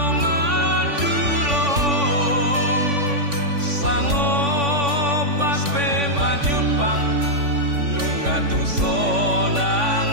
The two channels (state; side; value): late; left; 3.5 ms